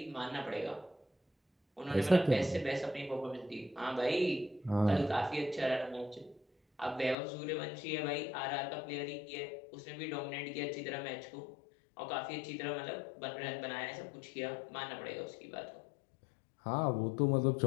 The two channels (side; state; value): right; drops out; at 7.2 s